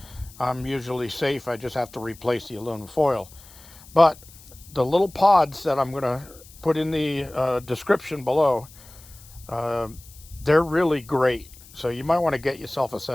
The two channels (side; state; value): left; noise; hiss, 22 dB below the sound